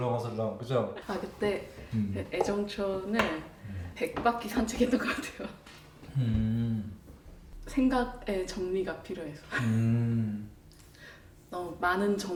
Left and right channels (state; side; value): identical; both; correlation 1.00